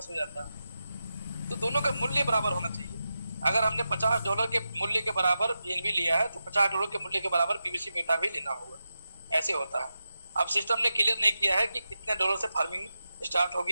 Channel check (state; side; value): inverted; both; correlation -0.90